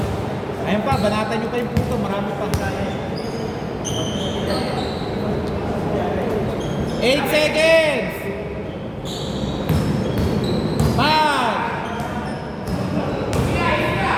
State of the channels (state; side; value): identical; both; correlation 1.00